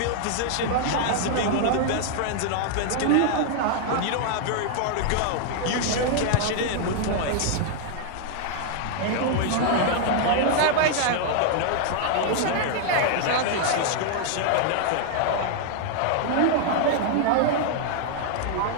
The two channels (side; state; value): both; different; correlation 0.00